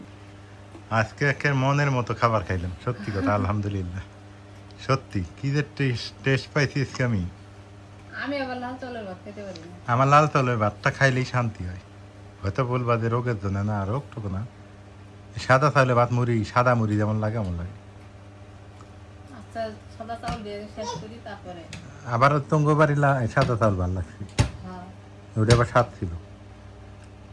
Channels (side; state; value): both; identical; correlation 1.00